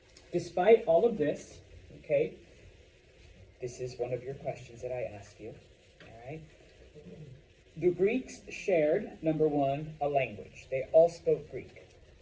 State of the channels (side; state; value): both; identical; correlation 1.00